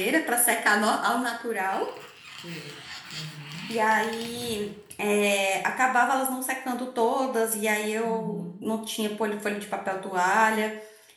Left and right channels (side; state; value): both; identical; correlation 1.00